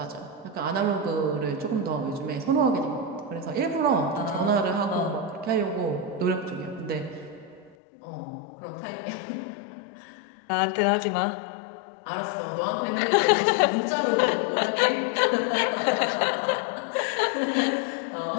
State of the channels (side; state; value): right; drops out; at 7.8 s